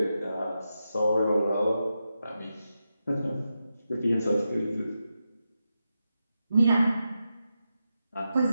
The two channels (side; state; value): both; inverted; correlation -0.88